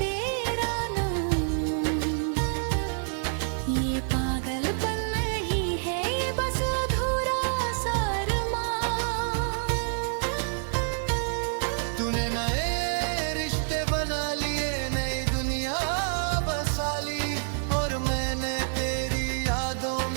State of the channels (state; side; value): silent; left; digital silence